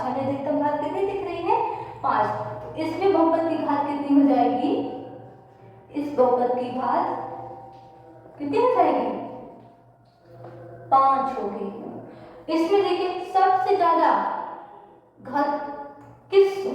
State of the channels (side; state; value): both; identical; correlation 1.00